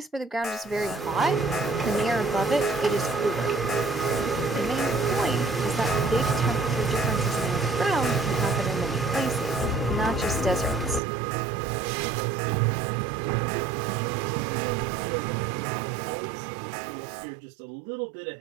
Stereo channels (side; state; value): left; drops out; at 11.0 s